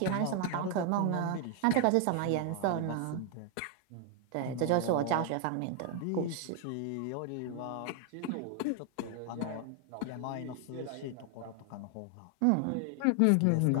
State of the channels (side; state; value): both; different; correlation 0.01